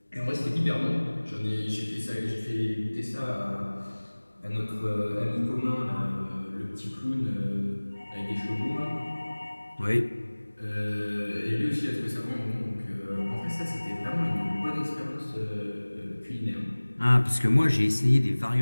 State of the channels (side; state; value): both; inverted; correlation -1.00